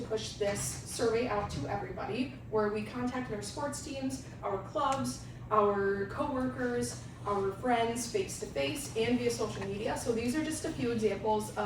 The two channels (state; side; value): identical; both; correlation 1.00